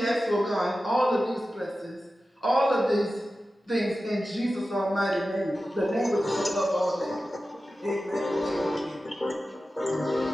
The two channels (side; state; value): both; normal; correlation 0.94